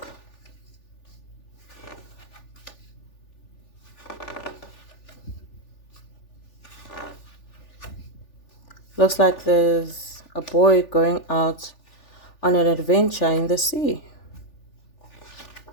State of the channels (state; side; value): late; right; 3.4 ms